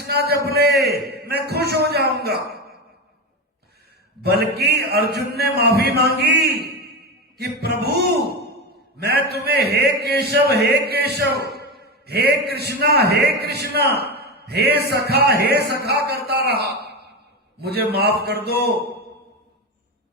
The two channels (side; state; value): both; normal; correlation 0.18